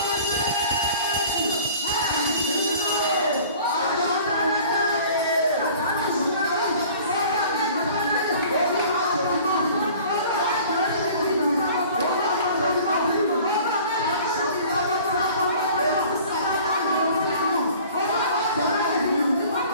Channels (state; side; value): inverted; both; correlation -0.47